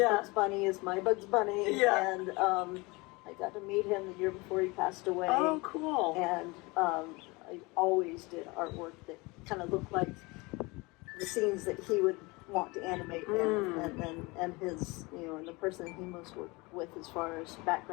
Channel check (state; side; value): quieter; right; 25.0 dB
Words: Bugs Bunny is my Bugs Bunny. Yeah. And I got to meet him the year before he passed away. Oh, cool. And I always did artwork that kind of looked like the scenes that he would want to animate and his, you know, and the person he most worked with as far as